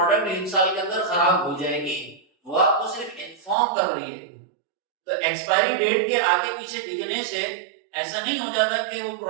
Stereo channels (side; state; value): left; drops out; at 3.6 s